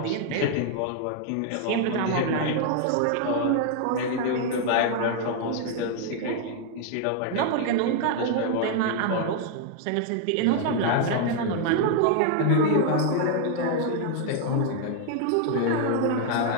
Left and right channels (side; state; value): both; different; correlation 0.00